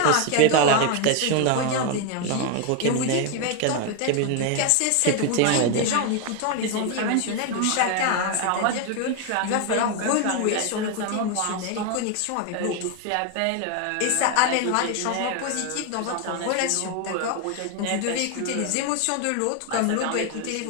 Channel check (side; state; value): both; different; correlation 0.01